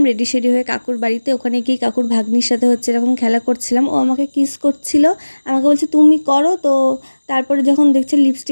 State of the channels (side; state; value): both; inverted; correlation -1.00